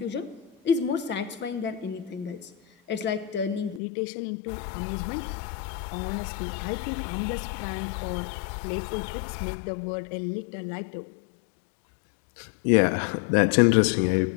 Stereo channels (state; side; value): drops out; right; at 3.8 s